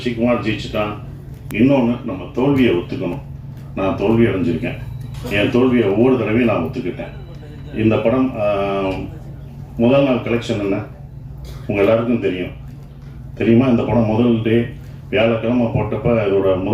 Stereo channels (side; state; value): both; identical; correlation 1.00